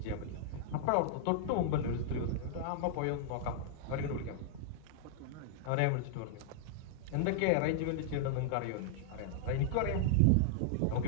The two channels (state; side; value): different; both; correlation -0.01